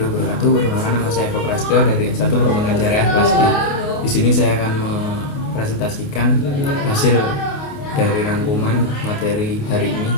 wabarakatuh. Perkenalkan, nama saya Eko Prasetyo dari S1 Perbankan Syariah kelas D. Di sini saya akan mempresentasikan hasil dari rangkuman materi hari ini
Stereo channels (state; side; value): late; right; 28 ms